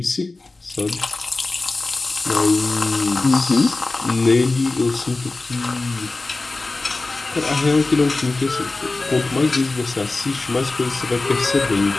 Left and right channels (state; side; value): quieter; right; 3.3 dB